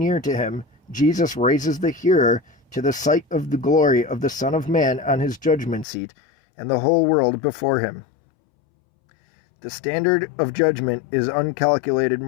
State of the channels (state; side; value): drops out; right; at 5.9 s